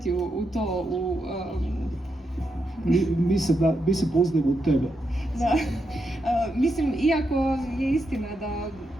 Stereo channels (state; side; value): normal; both; correlation 0.84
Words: u to, Mi se poznajemo u tebe. Da, mislim, iako je istina da